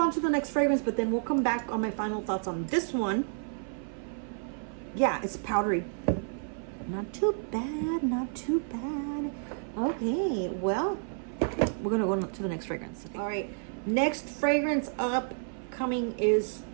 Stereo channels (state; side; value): silent; left; 55 dB below the other